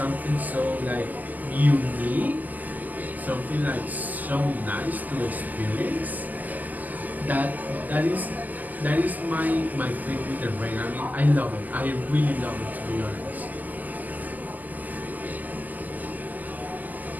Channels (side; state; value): left; late; 0.083 ms